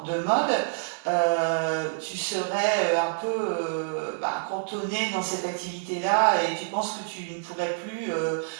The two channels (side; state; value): left; silent; digital silence